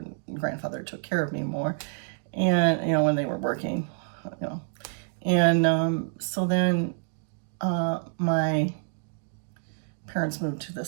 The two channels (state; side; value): silent; left; digital silence